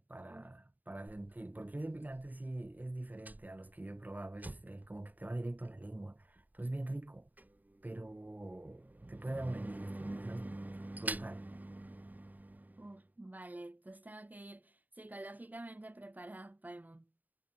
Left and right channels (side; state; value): left; late; 0.084 ms